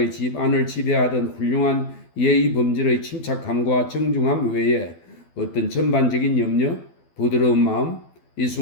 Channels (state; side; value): late; right; 12 ms